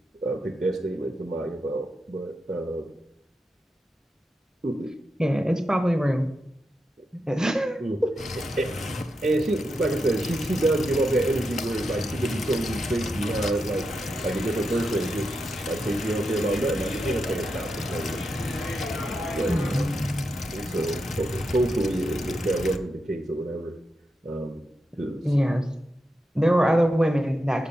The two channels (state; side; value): normal; both; correlation 0.86